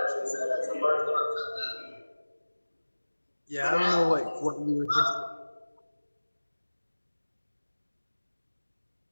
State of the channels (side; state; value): both; inverted; correlation -1.00